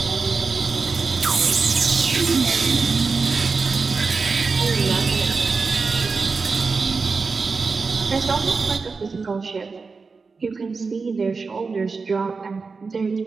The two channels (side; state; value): left; quieter; 4.6 dB